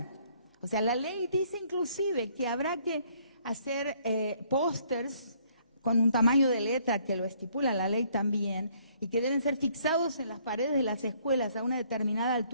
o sea, la ley dice inclusive que habrá que hacer pósters con un tamaño de letra que lo estipula la ley también, y que deben ser fixados en las paredes de las escuelas a una determinada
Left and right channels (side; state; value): both; inverted; correlation -0.64